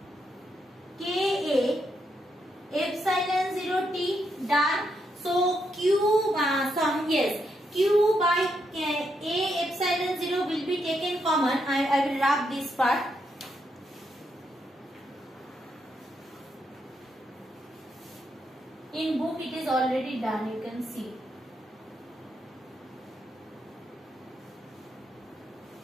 Ka epsilon 0 t. Done. So Q Q by A epsilon 0 will be taken common. I will rub this part. In book it is already done, you can see.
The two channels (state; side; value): normal; both; correlation 0.79